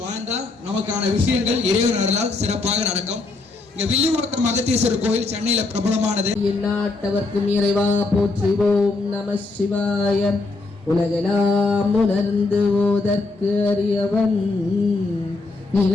வாழ்ந்தா நமக்கான விஷயங்கள் இறைவன் அருளால் சிறப்பாக நடக்கும். இங்க வில்லிவாக்கம் அகத்தீஸ்வரர் கோயில் சென்னையில பிரபலமானது. எந்நாட்டவர்க்கும் இறைவா போற்றுவோம் நம சிவாய. உலகெல்லாம் உணர்ந்து ஓதற்கு அறியவன்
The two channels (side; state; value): right; quieter; 3.5 dB